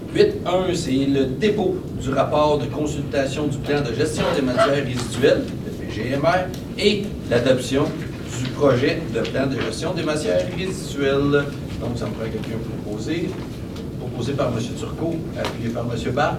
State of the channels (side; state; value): both; identical; correlation 1.00